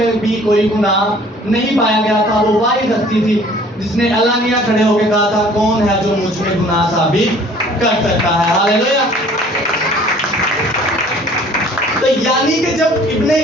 بھی کوئی گناہ نہیں پایا گیا تھا۔ وہ واحد ہستی تھی جس نے علانیہ کھڑے ہو کے کہا تھا کون ہے جو مجھ میں گناہ ثابت کر سکتا ہے۔ ہاللیلویا۔ تو یعنی کہ جب ابن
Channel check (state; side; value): normal; both; correlation 0.53